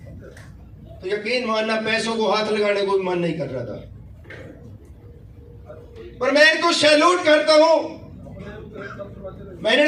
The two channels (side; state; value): both; identical; correlation 1.00